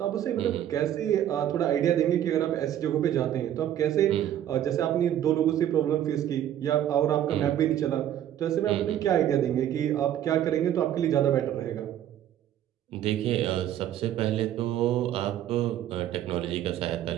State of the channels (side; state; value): left; quieter; 11.3 dB